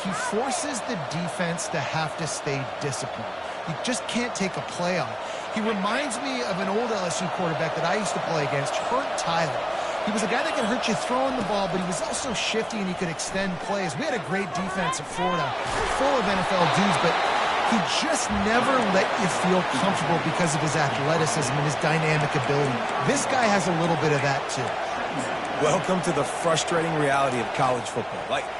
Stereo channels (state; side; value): identical; both; correlation 1.00